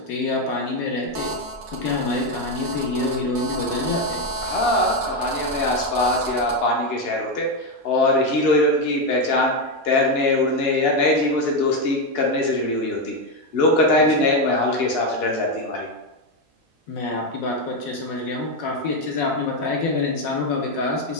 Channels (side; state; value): both; normal; correlation 0.08